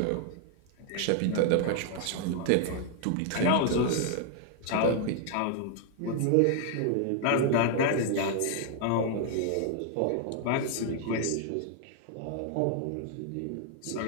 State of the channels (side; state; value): both; different; correlation 0.00